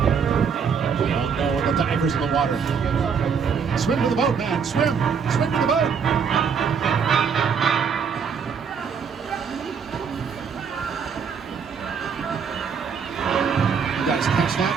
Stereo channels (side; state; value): left; quieter; 6.4 dB